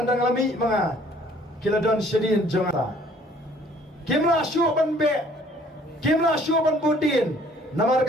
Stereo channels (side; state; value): both; normal; correlation 0.57